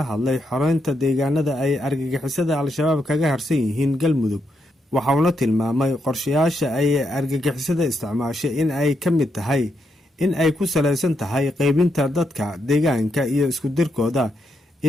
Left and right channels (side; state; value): both; normal; correlation 0.81